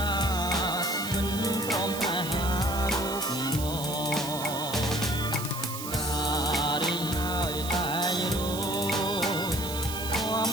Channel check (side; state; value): right; noise; hiss, 8 dB below the sound